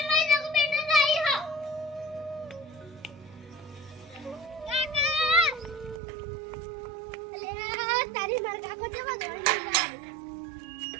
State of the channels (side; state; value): left; drops out; at 6.0 s